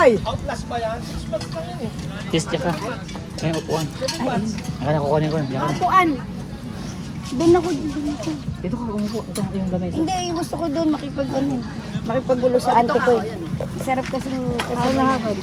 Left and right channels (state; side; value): identical; both; correlation 1.00